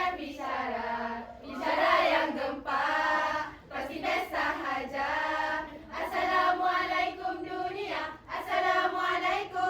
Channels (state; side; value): identical; both; correlation 1.00